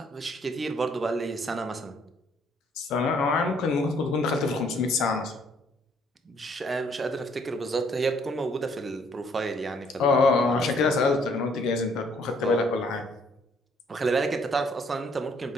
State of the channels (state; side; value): normal; both; correlation 0.64